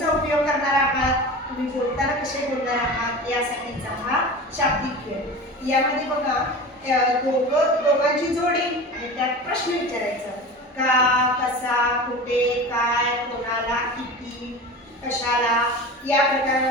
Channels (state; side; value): normal; both; correlation 0.32